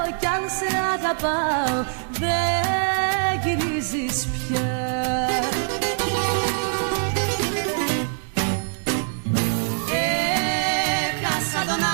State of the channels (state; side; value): silent; left; digital silence